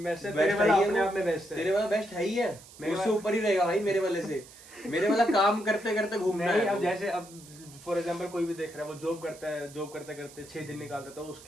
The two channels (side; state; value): right; noise; hiss, 20 dB below the sound